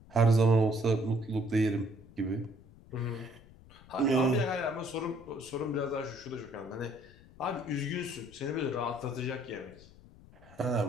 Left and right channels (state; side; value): noise; left; rumble, 22 dB below the sound